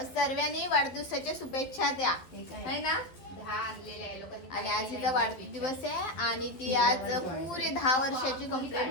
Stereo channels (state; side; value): late; right; 12 ms